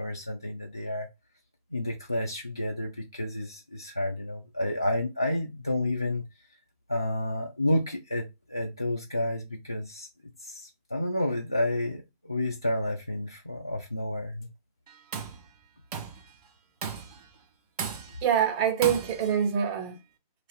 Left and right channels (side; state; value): both; inverted; correlation -0.66